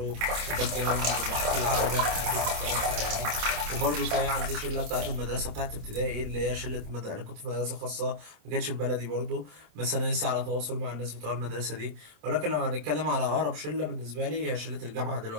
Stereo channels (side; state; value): left; late; 27 ms